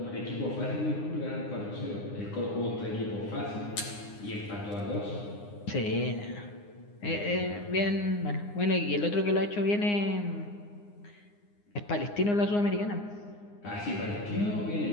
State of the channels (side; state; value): right; late; 9.7 ms